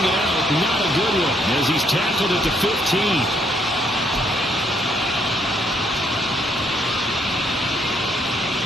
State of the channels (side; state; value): both; normal; correlation 0.71